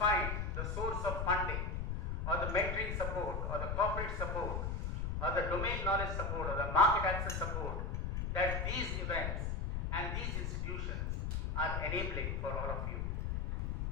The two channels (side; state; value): left; noise; rumble, 1 dB below the sound